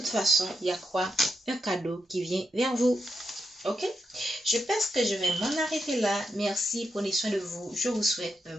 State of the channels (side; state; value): both; normal; correlation 0.84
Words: façon il y a quoi, un cadeau qui vient vers vous. Ok, je pense que je vais m'en arrêter là. Merci, prenez soin de vous. Je vous souhaite un